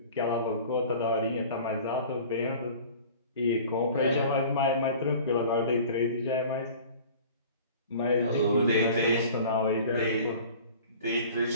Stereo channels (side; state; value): both; inverted; correlation -0.44